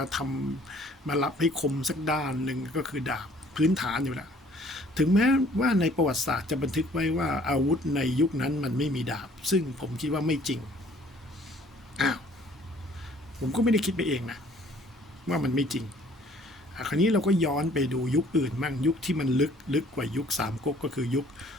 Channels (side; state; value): both; normal; correlation 0.57